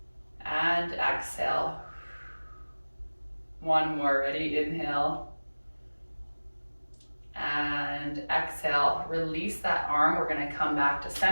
and exhale. 1 more, ready? Inhale And exhale, release that arm. We're gonna come back to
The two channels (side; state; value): both; inverted; correlation -1.00